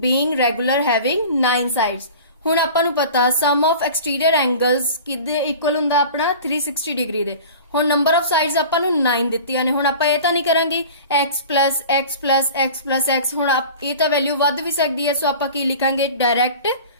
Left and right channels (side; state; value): both; inverted; correlation -0.39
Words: regular having 9 sides ਹੁਣ ਆਪਾਂ ਨੂੰ ਪਤਾ ਸਮ ਆਫ ਐਕਸਟੀਰੀਅਰ ਐਂਗਲਸ ਕਿਹਦੇ ਇਕੁਅਲ ਹੁੰਦਾ ਆਪਣਾ 360 ਡਿਗਰੀ ਦੇ ਹੁਣ ਨੰਬਰ ਆਫ ਸਾਈਡਸ ਆਪਾਂ ਨੂੰ 9 ਦਿੱਤੀਆਂ ਨੇ ਹੁਣ ਆਪਾਂ ਇਹ ਤਾਂ ਨਹੀਂ ਕਰਾਂਗੇ x ਹੁਣ ਇਹ ਤਾਂ ਵੈਲਿਊ ਵੱਧ ਵੀ ਸਕਦੀ ਹੈ ਸੋ ਆਪਾਂ ਕੀ ਲਿਖਾਂਗੇ direct